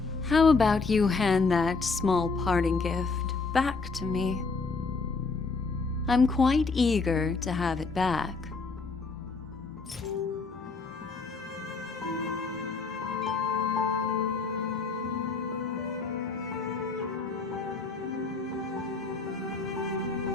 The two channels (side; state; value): right; quieter; 4.3 dB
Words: how about you hand that small parting gift back to me? I'm quite eager to have it back.